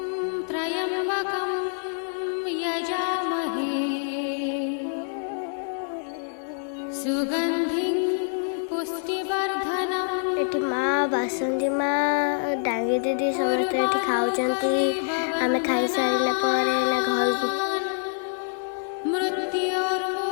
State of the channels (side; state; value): right; silent; digital silence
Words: त्र्यम्बकं यजामहे सुगन्धिं पुष्टिवर्धनम् ଏଠି ମା, ବାସନ୍ତୀ ମା, ଡାଙ୍ଗି ଦିଦି ସମସ୍ତେ ଏଠି ଖାଉଛନ୍ତି। ଆମେ ଖାଇସାରିଲା ପରେ ନା ଘରକୁ